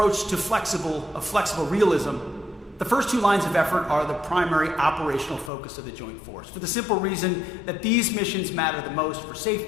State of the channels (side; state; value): right; drops out; at 5.5 s